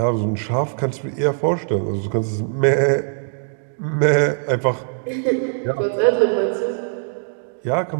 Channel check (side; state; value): left; silent; digital silence